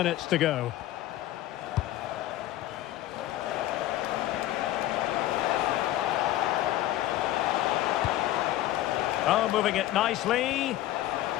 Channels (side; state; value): right; quieter; 14.6 dB